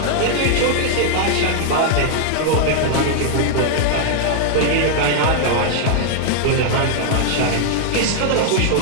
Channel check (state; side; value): different; both; correlation 0.00